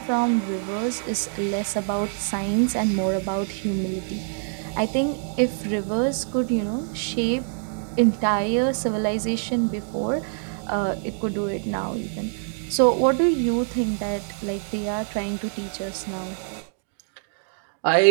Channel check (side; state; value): left; silent; digital silence